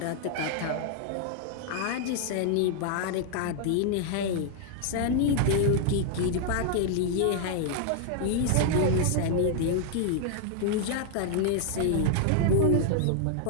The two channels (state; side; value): different; both; correlation -0.01